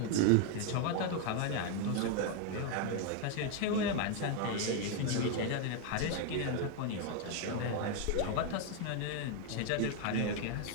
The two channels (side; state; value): both; different; correlation 0.01